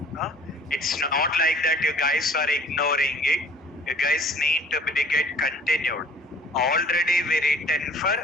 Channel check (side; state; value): both; normal; correlation 0.52